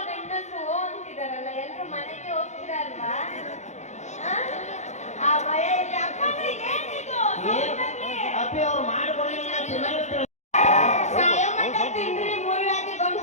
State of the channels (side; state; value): right; late; 0.33 ms